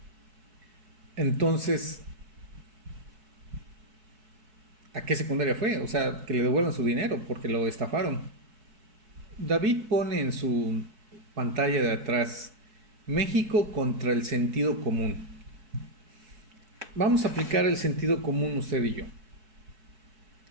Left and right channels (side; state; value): left; late; 4.6 ms